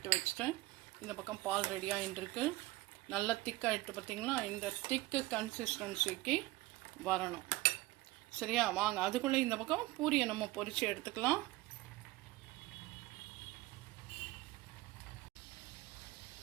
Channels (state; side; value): quieter; left; 19.3 dB